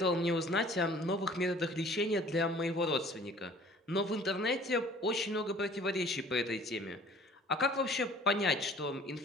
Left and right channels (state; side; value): normal; both; correlation 0.51